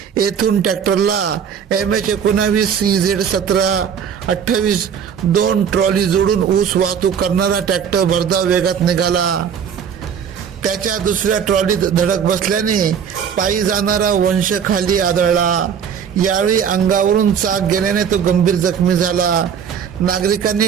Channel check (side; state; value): left; quieter; 7.6 dB